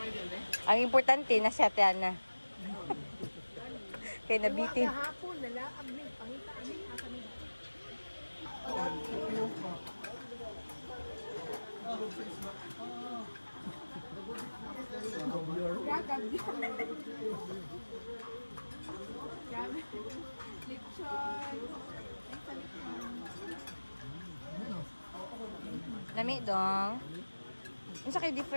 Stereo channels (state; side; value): inverted; both; correlation -1.00